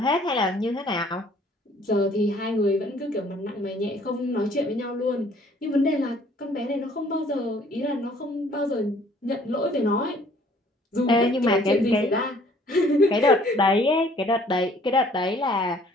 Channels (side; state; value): both; normal; correlation 0.58